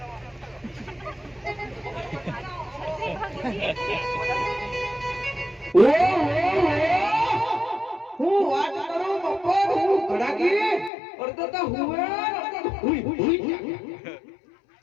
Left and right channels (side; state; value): right; drops out; at 10.9 s